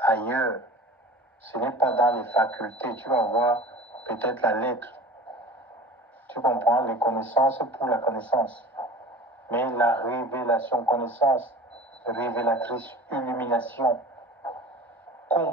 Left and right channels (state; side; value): normal; both; correlation 0.39